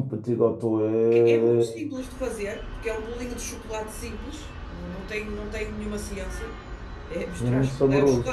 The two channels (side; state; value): both; identical; correlation 1.00